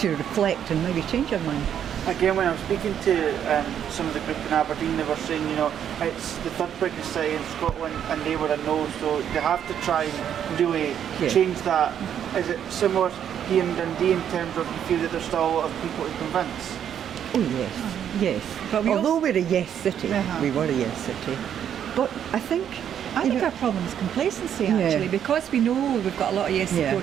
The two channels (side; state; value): left; quieter; 9.3 dB